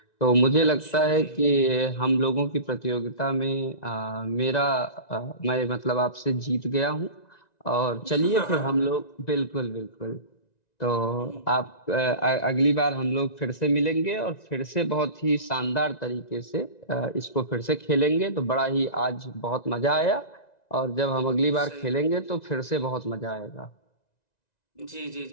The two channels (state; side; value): late; right; 1.9 ms